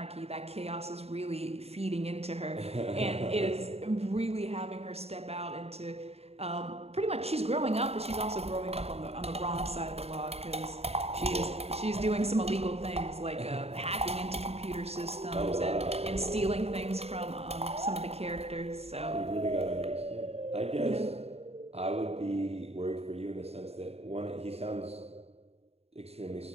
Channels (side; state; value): left; late; 0.30 ms